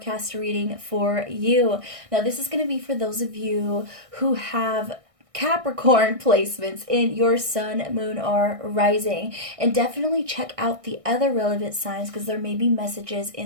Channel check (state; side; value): late; left; 1.6 ms